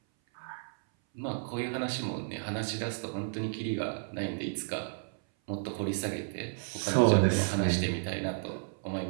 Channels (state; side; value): silent; left; 56 dB below the other